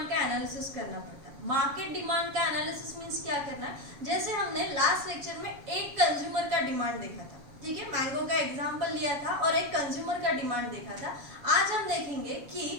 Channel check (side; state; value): left; late; 7.1 ms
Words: का एनालिसिस करना पड़ता है। मार्केट डिमांड का एनालिसिस मींस क्या करना है? जैसे हमने लास्ट लेक्चर में एक कंज्यूमर का डिमांड देखा था, ठीक है, मैंगो का एग्जांपल लिया था और एक कंज्यूमर का डिमांड देखा था। आज हम देखेंगे